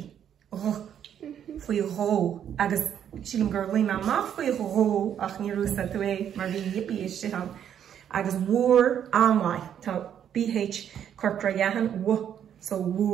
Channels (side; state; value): left; quieter; 9.3 dB